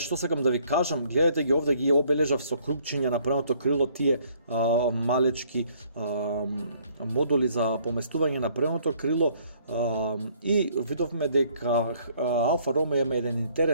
што сакам да ви кажам, гледате ги овде, ги обележав со крупчиња на предното крило тие малечки модули за поместување на предното крило и видовме дека Алфа Ромео има еден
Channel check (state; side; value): inverted; both; correlation -0.63